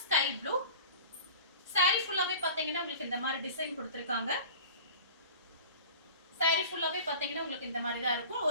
ஸ்கை ப்ளூ. சாரி ஃபுல்லாவே பாத்தீங்கன்னா உங்களுக்கு இந்த மாதிரி டிசைன் கொடுத்திருக்காங்க. சாரி ஃபுல்லாவே பாத்தீங்கன்னா உங்களுக்கு இந்த மாதிரி தான் இருக்கும்.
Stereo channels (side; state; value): both; inverted; correlation -0.39